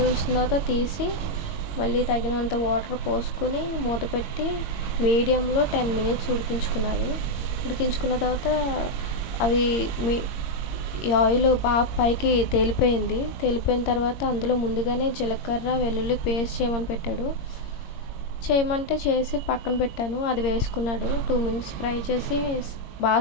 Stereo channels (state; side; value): late; right; 22 ms